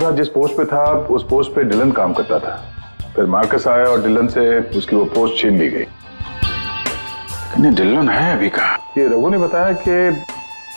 आज जिस पोस्ट पे था उस पोस्ट पे डिलन काम करता था, फिर मार्कस आया और डिलन से उसकी वो पोस्ट छीन ली गई। डिलन है अभी कहाँ? ये रघु ने बताया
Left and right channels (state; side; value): inverted; both; correlation -1.00